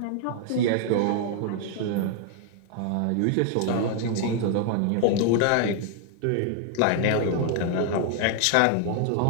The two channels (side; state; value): both; different; correlation 0.00